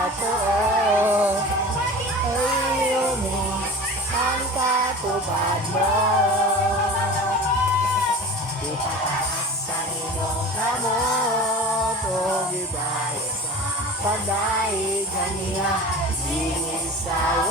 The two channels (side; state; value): both; normal; correlation 0.36